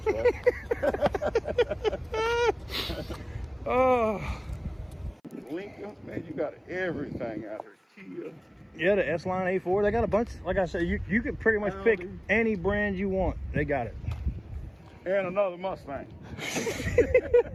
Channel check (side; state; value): both; identical; correlation 1.00